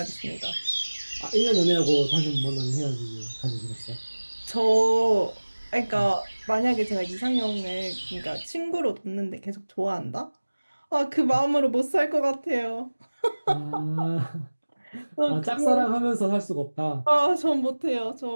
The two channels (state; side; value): inverted; both; correlation -1.00